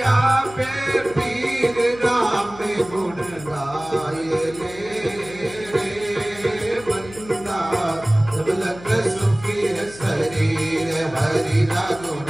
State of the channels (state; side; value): noise; left; hum, 18 dB below the sound